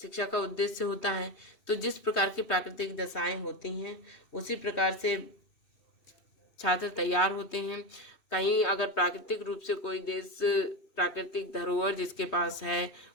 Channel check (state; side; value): late; right; 2.6 ms